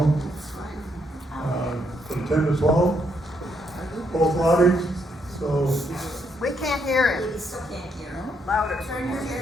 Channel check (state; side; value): normal; both; correlation 0.75